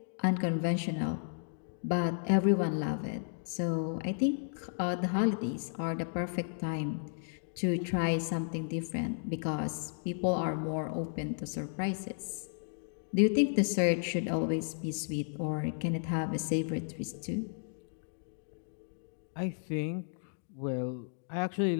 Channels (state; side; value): silent; right; digital silence